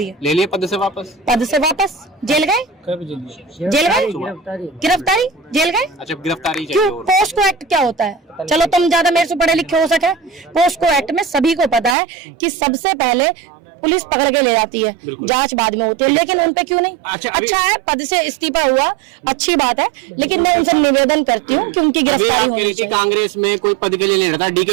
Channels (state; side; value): drops out; left; at 12.0 s